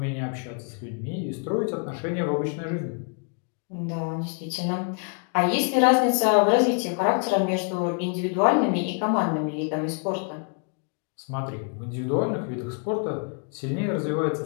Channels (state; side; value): quieter; right; 38.7 dB